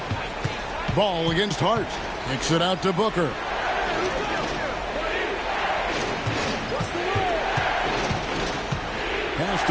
Ball against Hart. Kicks it out to Booker. Pass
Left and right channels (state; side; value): identical; both; correlation 1.00